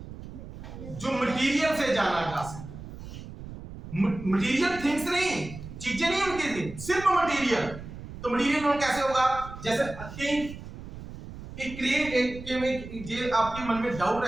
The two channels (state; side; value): noise; right; rumble, 12 dB below the sound